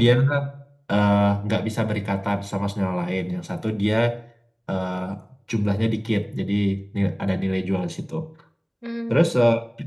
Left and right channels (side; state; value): both; identical; correlation 1.00